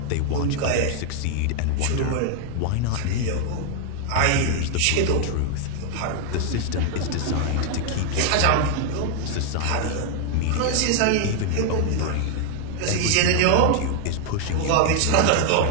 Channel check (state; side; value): different; both; correlation 0.00